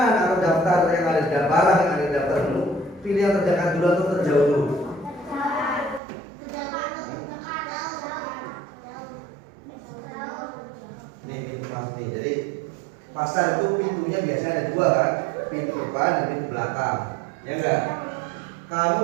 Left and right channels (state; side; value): drops out; left; at 6.0 s